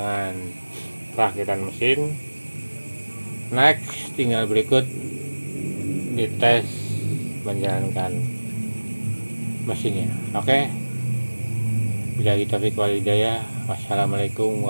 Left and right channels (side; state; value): both; inverted; correlation -1.00